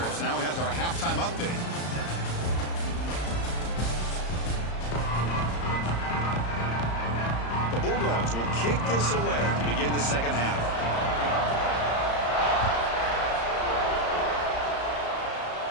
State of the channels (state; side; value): late; right; 35 ms